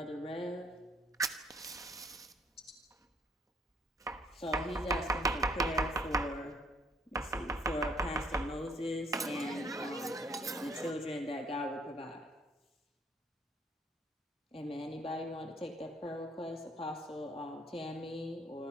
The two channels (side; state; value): both; normal; correlation 0.65